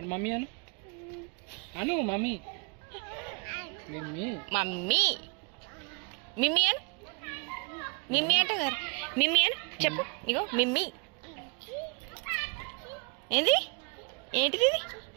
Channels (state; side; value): quieter; left; 32.4 dB